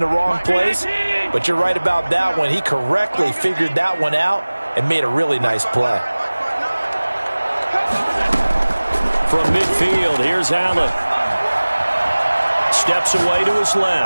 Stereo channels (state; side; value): inverted; both; correlation -1.00